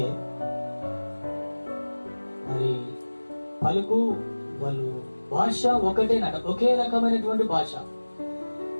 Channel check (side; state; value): both; inverted; correlation -1.00